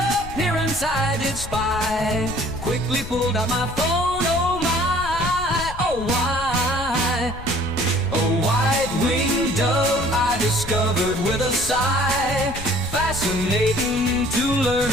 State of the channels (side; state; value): left; noise; rumble, 11 dB below the sound